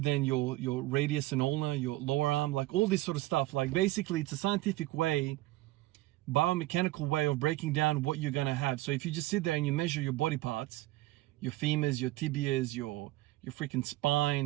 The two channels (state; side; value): quieter; left; 17.8 dB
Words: your radius and ulna, your lower arm, like all this sort of stuff. Like basically it's a scientific way, biomechanical way of breaking down what you're going to have. So if you just sit there and you measure your body parts, your femurs, your tibias, your freaking